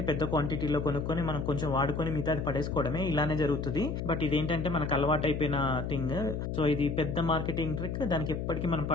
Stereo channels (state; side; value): noise; left; hum, 3 dB below the sound